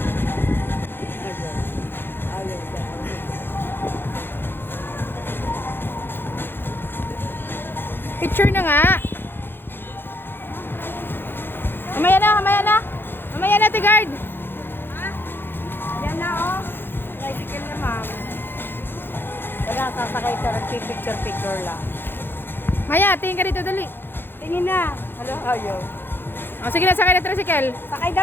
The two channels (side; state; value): right; late; 0.10 ms